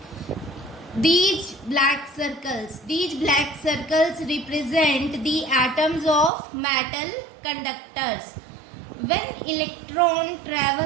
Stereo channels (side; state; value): left; drops out; at 6.3 s